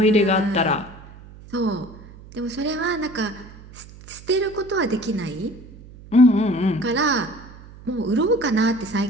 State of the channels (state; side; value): noise; right; hum, 19 dB below the sound